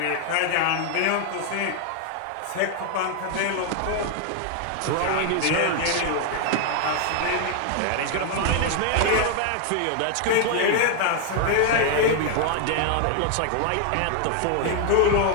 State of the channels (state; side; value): different; both; correlation 0.00